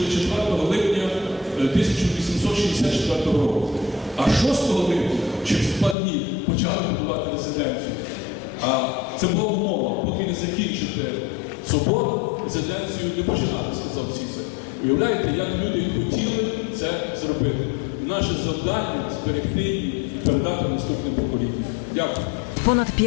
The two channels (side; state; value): right; drops out; at 6.0 s